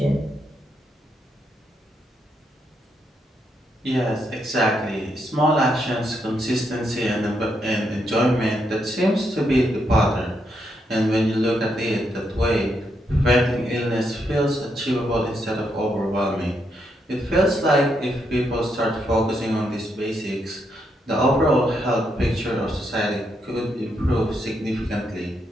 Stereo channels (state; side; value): normal; both; correlation 0.79